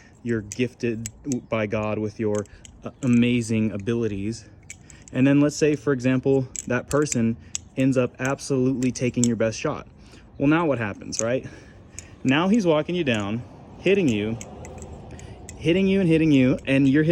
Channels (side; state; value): both; identical; correlation 1.00